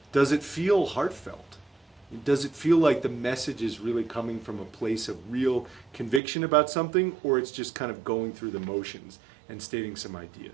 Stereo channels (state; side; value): drops out; left; at 6.2 s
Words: Does it feel heartfelt? Does it feel like the message is really coming from a place of real conviction about something, or it's just kind of going through the motions and stating some